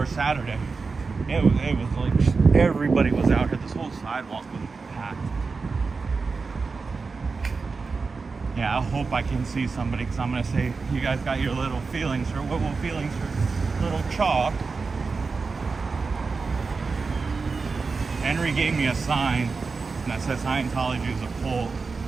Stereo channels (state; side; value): quieter; left; 4.5 dB